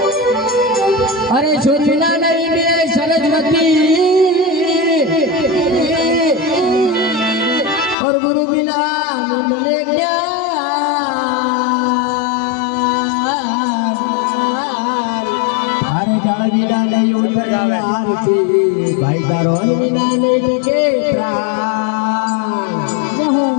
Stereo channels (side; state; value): right; drops out; at 8.0 s